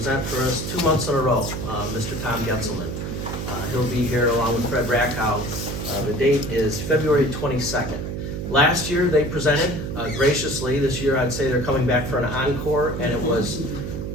for us 2 months in a row, Mr. Tom Getzelman. He'll be here along with Fred Rackhow. The date is February 22nd. Last year they presented graciously. This year I'd say they're coming back for an encore, and it was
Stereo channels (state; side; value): noise; right; hum, 5 dB below the sound